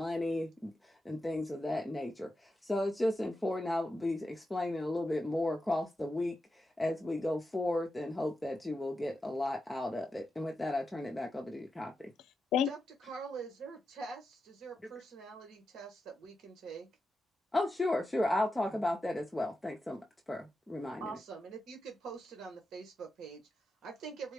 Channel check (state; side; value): normal; both; correlation 0.89